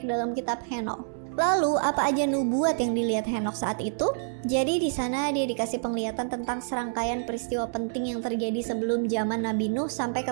dalam kitab Henoch. Lalu apa aja nubuat yang dilihat Henoch saat itu? Jadi di sana dia dikasih penglihatan tentang serangkaian peristiwa penting yang terjadi sebelum zaman Nabi Nuh sampai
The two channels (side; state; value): left; silent; 60 dB below the other